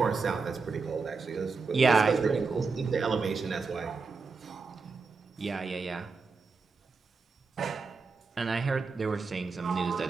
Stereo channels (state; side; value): quieter; left; 4.5 dB